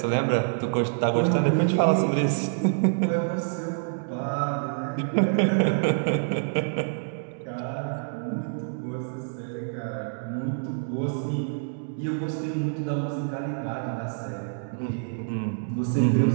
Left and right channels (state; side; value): silent; left; digital silence